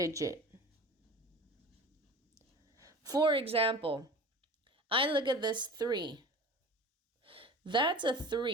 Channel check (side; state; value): both; normal; correlation 0.37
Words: For example, I look at this 3. That's a